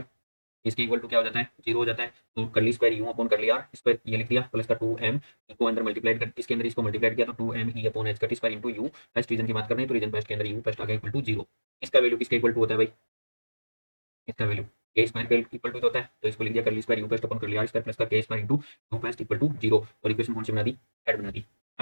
इसके इक्वल टू क्या हो जाता है, जीरो हो जाता है। तो curly square u upon curly r square ये लिख दिया प्लस का 2m को अंदर मल्टीप्लाई कर, इसके अंदर इसको मल्टीप्लाई किया तो 2m e अपॉन h का square into u। First region की बात कर रहे हैं तो रीजन फर्स्ट के अंदर u फर्स्ट आ गया इक्वल टू जीरो। इसका वैल्यू किसके इक्वल टू होता है भाई, इसका वैल्यू के स्क्वायर के इक्वल टू होता है। तो इसको लिख दिया curly square u first upon curly r square plus का k square into u first equal to zero. और इक्वेशन कौन सी बना दी, ऐड बना दी।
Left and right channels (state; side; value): inverted; both; correlation -1.00